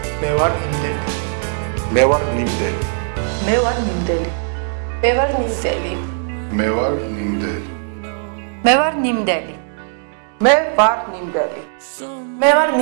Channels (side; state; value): left; silent; digital silence